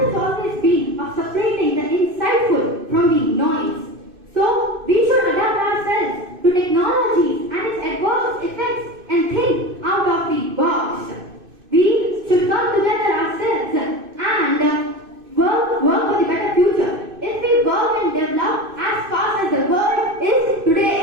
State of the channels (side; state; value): left; late; 2.6 ms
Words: has always been of separating the insightful from the noise. So, we should adapt ourselves to technology and its adverse effects and think out of the box. We should come together ourselves and work for the better future. If we work and develop as fast as the world is